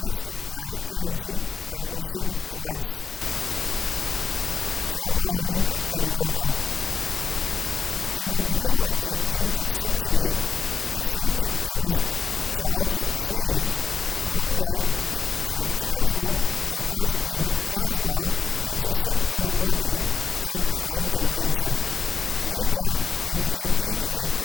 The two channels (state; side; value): quieter; right; 5.4 dB